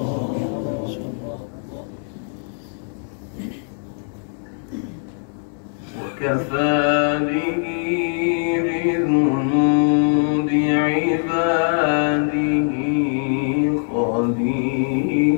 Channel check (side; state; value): right; silent; 62 dB below the other